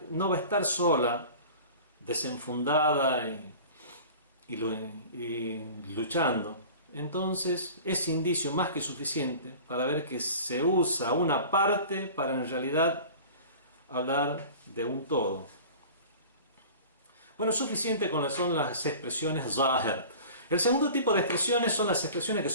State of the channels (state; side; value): inverted; both; correlation -0.40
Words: no va a estar sola, desenfundada y luchando. Entonces es indicio más que suficiente para ver que se usa una parte para en realidad hablar de un todo. Bueno, suficiente con son las expresiones zahir. El segundo tipo de expresiones son las expresiones que